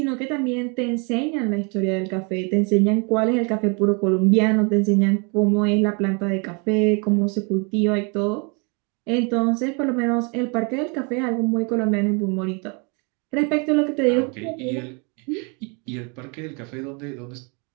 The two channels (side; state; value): left; quieter; 33.3 dB